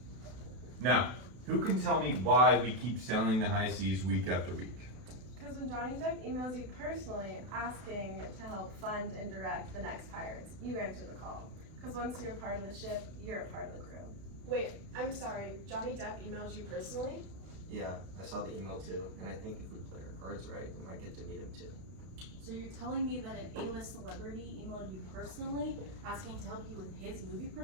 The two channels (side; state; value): left; late; 32 ms